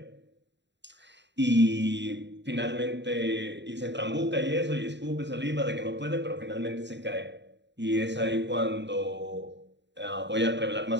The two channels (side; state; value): left; late; 0.52 ms